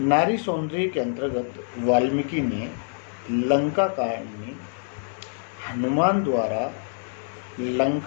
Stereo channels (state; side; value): silent; right; digital silence